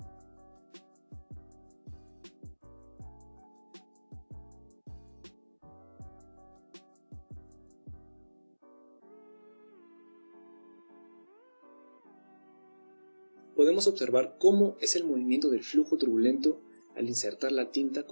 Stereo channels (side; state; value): both; inverted; correlation -1.00